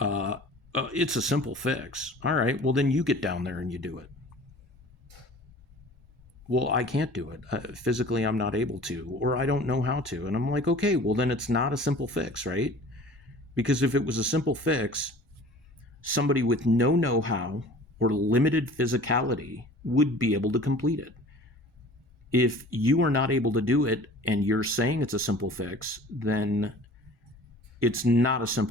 it's a simple fix. All right, well, then you get down there and you do it. Well, I can't do it. Physically, I'm not able to, or I don't know how to. And I'm like, okay, well, then it's not a simple fix, right? Because if it was a simple fix, somebody with no know-how or limited physicality would be able to complete it. If you are not able to do it and you're saying it's a simple fix, then it's not a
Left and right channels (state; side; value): normal; both; correlation 0.45